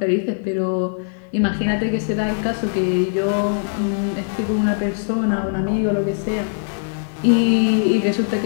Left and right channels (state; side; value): silent; right; 58 dB below the other